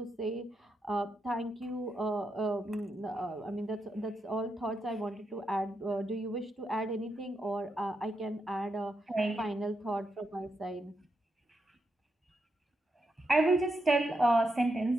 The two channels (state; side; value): normal; both; correlation 0.83